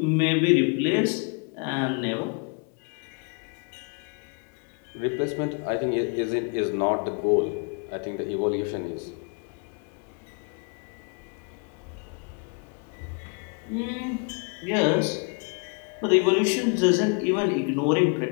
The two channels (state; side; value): quieter; right; 36.8 dB